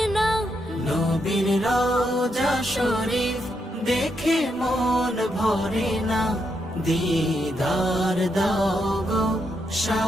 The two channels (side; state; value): both; normal; correlation 0.80